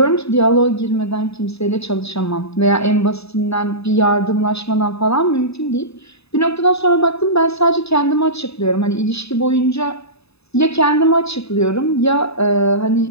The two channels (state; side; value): late; right; 0.79 ms